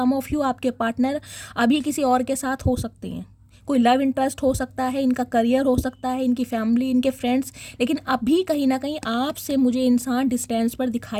ऑफ यू आपके पार्टनर अभी किसी और के साथ हो सकते हैं, कोई लव इंटरेस्ट हो सकता है, इनका करियर हो सकता है, इनकी फैमिली, इनके फ्रेंड्स, लेकिन अभी कहीं ना कहीं आपसे मुझे इंसान डिस्टेंस पर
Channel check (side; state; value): both; identical; correlation 1.00